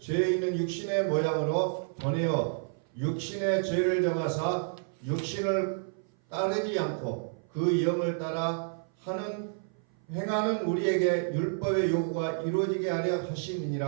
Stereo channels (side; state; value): left; silent; 56 dB below the other